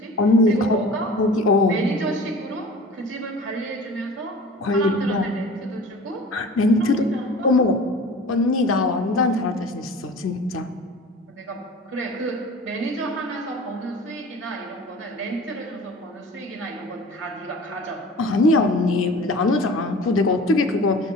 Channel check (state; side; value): normal; both; correlation 0.41